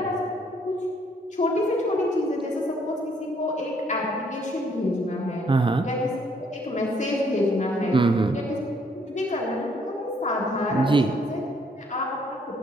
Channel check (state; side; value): normal; both; correlation 0.67